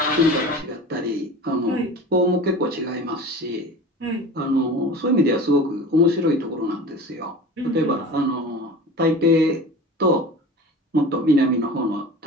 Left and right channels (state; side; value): normal; both; correlation 0.36